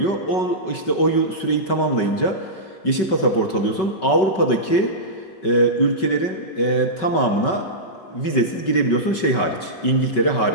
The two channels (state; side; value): late; right; 5.3 ms